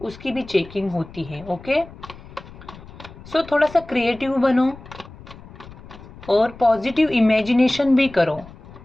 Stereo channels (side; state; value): left; noise; rumble, 18 dB below the sound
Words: उसकी भी चेकिंग होती है। ओके, सो थोड़ा सा क्रिएटिव बनो और पॉजिटिव इमेजिनेशन भी करो।